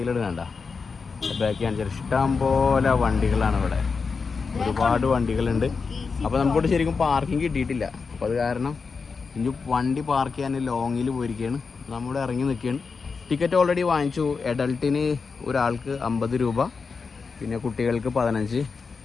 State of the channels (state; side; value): quieter; right; 5.0 dB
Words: ബാക്കിൽ കാണിച്ചാൽ ഇഷ്ടം പോലെ വണ്ടികളാണ് ഇവിടെ, ഒരുപാട് വണ്ടികളുണ്ട്. അപ്പോൾ നമുക്കിവിടെ ശരിക്കും പാർക്കിംഗ് കിട്ടിയിട്ടില്ല. അപ്പോൾ അത് കാരണം ഇനി വണ്ടി പാർക്ക് ചെയ്യാൻ ലോങ്ങിൽ പോയിരിക്കുകയാണ്. നമ്മളിവിടെ ഇറങ്ങി നിൽക്കുകയാണ്. ടിക്കറ്റ് ഓൾറെഡി വാങ്ങിച്ചു. അഡൾട്ടിന് ഒരാൾക്ക് 50 രൂപ, പിന്നെ കുട്ടികൾക്ക് 15,